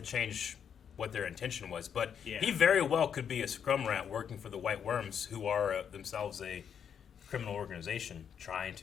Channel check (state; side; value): quieter; right; 7.9 dB